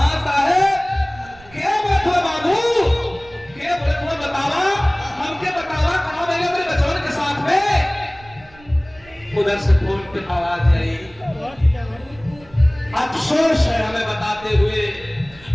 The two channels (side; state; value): right; noise; rumble, 24 dB below the sound